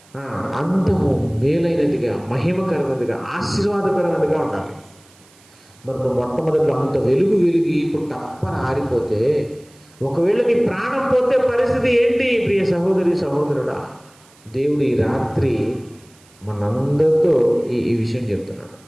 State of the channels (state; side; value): noise; right; hiss, 28 dB below the sound